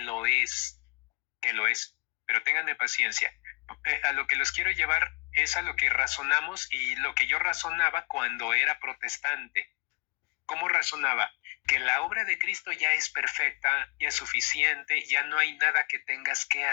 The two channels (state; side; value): quieter; right; 31.0 dB